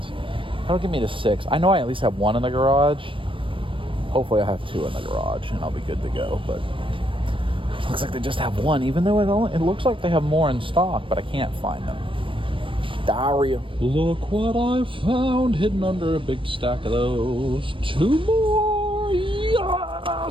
That'll give me the 6. I know I at least have 1 in the garage. Hopefully I have 2 in the garage and I'll be good to go. But it looks like they just have 1, even though it looks like they have more in stock, but I can't find them. Diarrhea. Look what I found hidden under a big stack of those. 2 more.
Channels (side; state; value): left; late; 0.25 ms